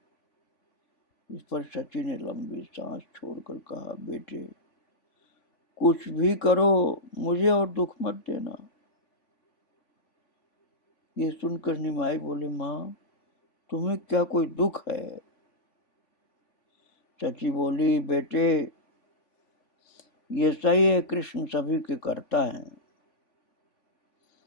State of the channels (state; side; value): late; right; 3.5 ms